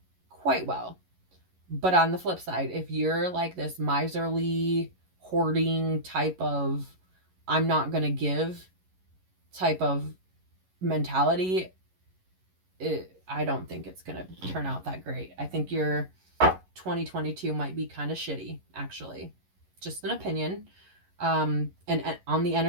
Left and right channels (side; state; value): left; late; 11 ms